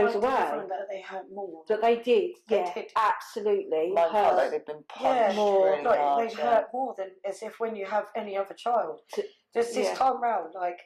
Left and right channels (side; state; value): both; identical; correlation 1.00